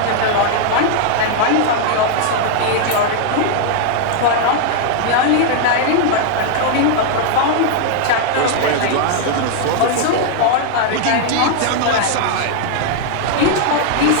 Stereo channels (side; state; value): both; different; correlation 0.00